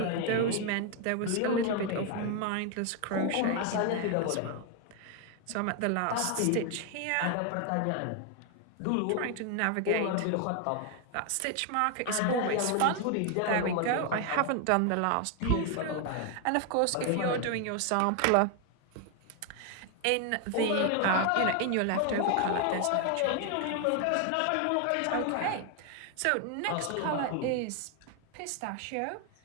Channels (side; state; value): both; different; correlation 0.01